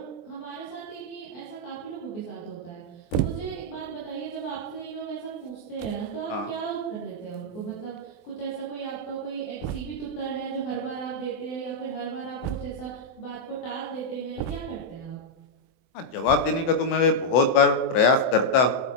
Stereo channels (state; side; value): late; right; 23 ms